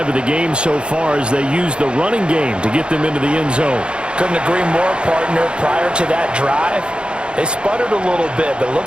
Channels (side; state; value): left; late; 0.054 ms